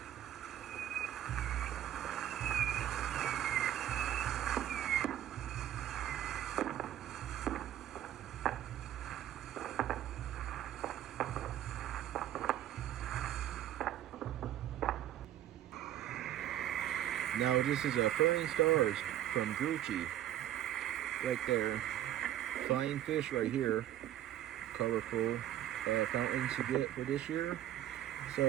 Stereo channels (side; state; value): left; quieter; 12.2 dB